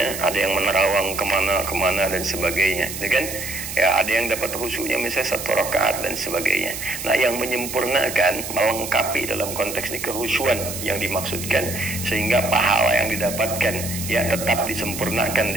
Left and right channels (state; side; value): noise; right; hiss, 7 dB below the sound